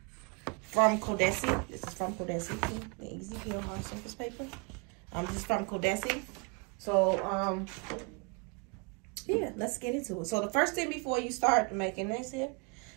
from Codesi. This is from Codesi, the Easy Peel hard surface paper. This is from Codesi. So, yeah, let's get into it. So the first thing before you start making this here,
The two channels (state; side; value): quieter; left; 30.9 dB